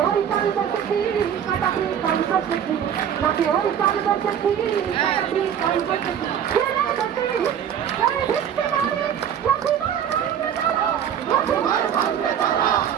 ওই কাল বসেছি কাটাবি কাল বসেছি নাকি ওই কাল বসেছি কাটাবি কাল বসেছি ফিরে গতি এই ভিত্তি মারি লক্ষ্মীবার ভাঙবে তারা লক্ষ্মীবার ভাঙবে তারা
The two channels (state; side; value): quieter; left; 9.0 dB